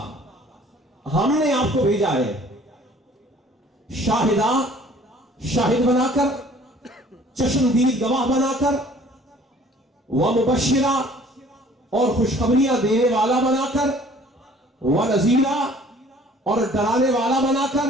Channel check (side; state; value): both; normal; correlation 0.53